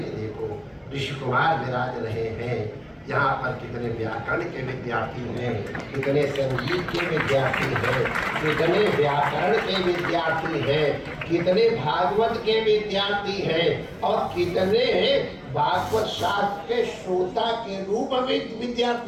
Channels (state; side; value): identical; both; correlation 1.00